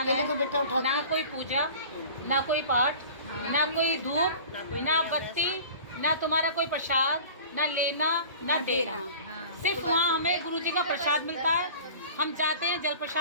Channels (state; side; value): inverted; both; correlation -0.41